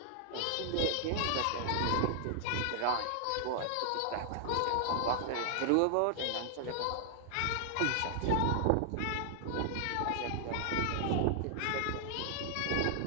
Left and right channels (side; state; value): both; different; correlation 0.00